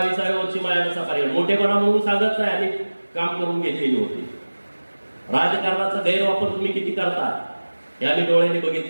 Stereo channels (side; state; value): both; inverted; correlation -1.00